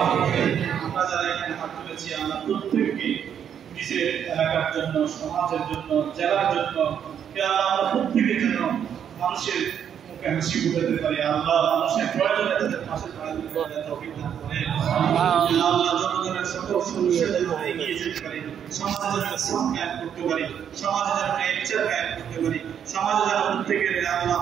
আমিন আমরা যারা এখানে হাত তুলেছি আল্লাহ প্রত্যেককে নিজের এলাকার জন্য সমাজের জন্য জেলার জন্য ইয়া আল্লাহ আমরা প্রত্যেকের জন্য মানুষের মুখে হাসি ফুটাতে পারি আল্লাহ মানুষের প্রয়োজনে তাদের পাশে দাঁড়াতে পারে তৌফিক দান করে ইয়া আল্লাহ জনগণের সকল সমস্যা যেন এগিয়ে যেতে পারে সমাজে যেন ইসলাম কায়েম করতে পারি সমাজে যেন বিচার কায়েম করতে পারি সমাজে যেন প্রত্যেকের আল্লাহ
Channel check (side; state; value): left; quieter; 8.7 dB